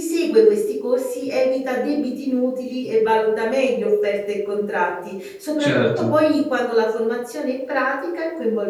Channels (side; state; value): both; identical; correlation 1.00